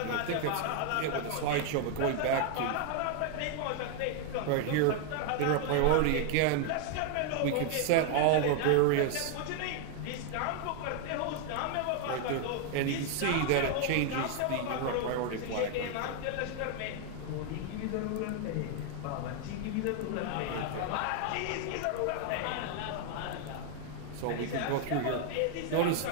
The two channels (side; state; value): both; different; correlation 0.00